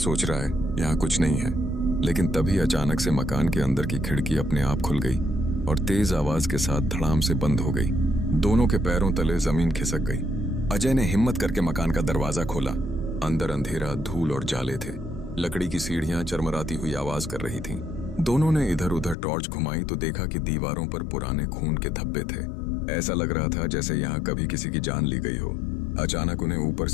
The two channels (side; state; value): right; drops out; at 19.2 s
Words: रहा है, यहाँ कुछ नहीं है। लेकिन तभी अचानक से मकान के अंदर की खिड़की अपने आप खुल गई और तेज आवाज के साथ धड़ाम से बंद हो गई। दोनों के पैरों तले जमीन खिसक गई। अजय ने हिम्मत करके मकान का दरवाजा खोला। अंदर अंधेरा, धूल और जाले थे। लकड़ी की सीढ़ियां चरमराती हुई आवाज कर रही थीं। दोनों ने इधर उधर टॉर्च घुमाई तो देखा कि दीवारों पर पुराने खून के धब्बे थे। ऐसा लग रहा था जैसे यहाँ कभी किसी की जान ली गई हो। अचानक उन्हें ऊपर